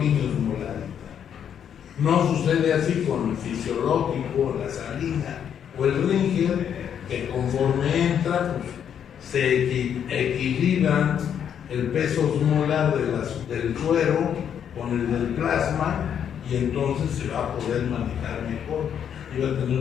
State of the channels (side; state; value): right; quieter; 8.6 dB